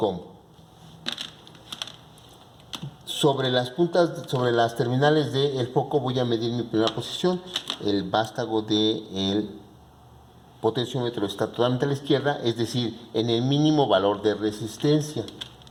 Sobre las terminales del foco voy a medir mi primera posición. El vástago del potenciómetro está totalmente a la izquierda, es decir, en el mínimo valor de resistencia.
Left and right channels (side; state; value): both; identical; correlation 1.00